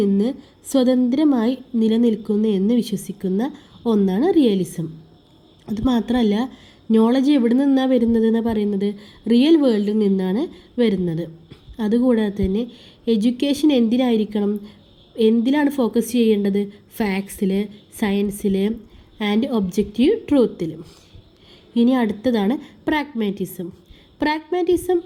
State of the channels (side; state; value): both; identical; correlation 1.00